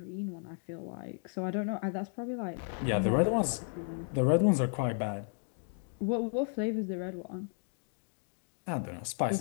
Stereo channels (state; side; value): silent; right; 55 dB below the other